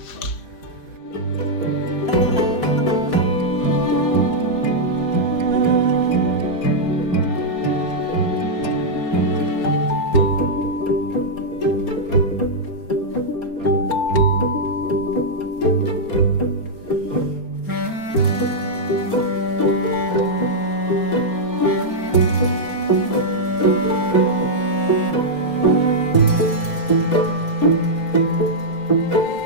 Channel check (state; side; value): late; right; 4.3 ms